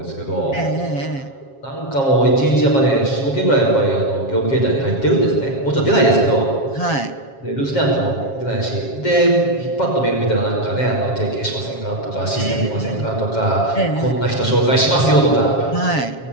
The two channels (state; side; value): late; right; 7.4 ms